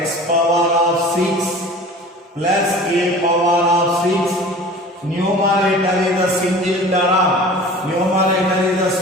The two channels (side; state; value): both; normal; correlation 0.41